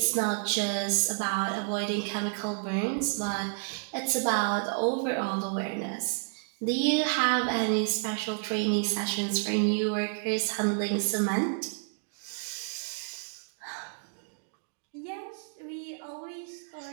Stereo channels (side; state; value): left; silent; digital silence